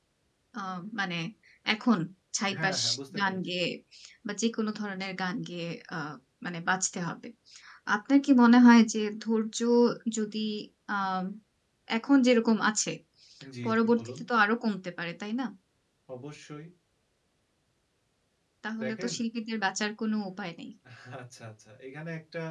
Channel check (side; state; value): both; identical; correlation 1.00